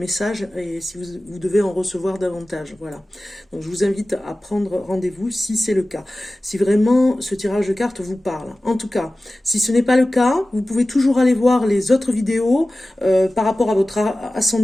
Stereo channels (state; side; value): normal; both; correlation 0.96